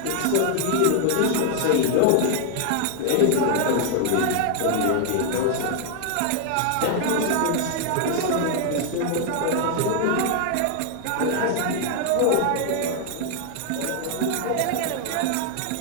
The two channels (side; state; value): both; different; correlation 0.00